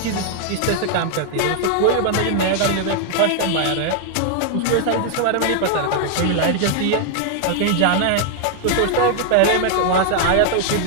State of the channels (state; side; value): different; both; correlation 0.00